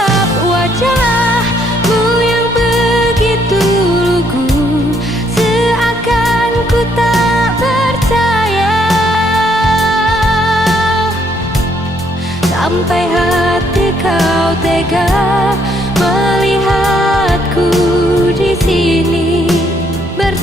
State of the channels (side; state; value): both; normal; correlation 0.70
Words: wajahmu yang begitu lugu, seakan ku tak percaya. Sampai hati kau tega melihatku di sini